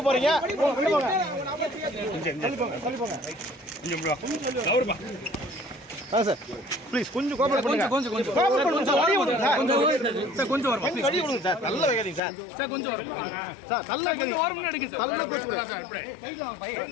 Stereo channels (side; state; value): right; drops out; at 12.2 s